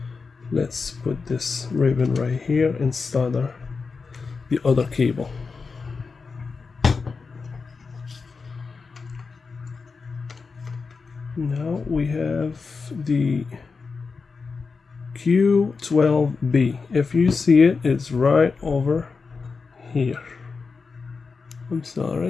let's put this ribbon right here and solder the other cable. Now we have the Q12B. If you see it, it's right over here. I'm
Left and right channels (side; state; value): right; quieter; 4.7 dB